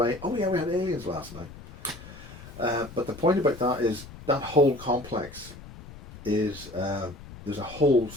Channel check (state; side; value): noise; left; rumble, 16 dB below the sound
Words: oh yeah, we had aliens last night. But the point about that is that whole complex is